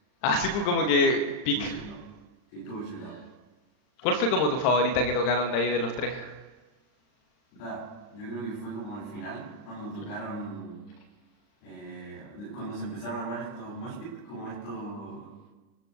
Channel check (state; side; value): late; right; 39 ms